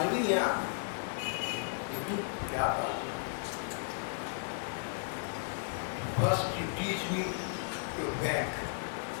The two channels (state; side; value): silent; right; digital silence